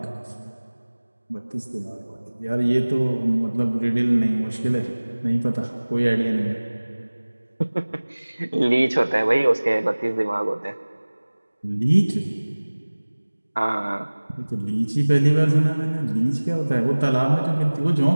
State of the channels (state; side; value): inverted; both; correlation -1.00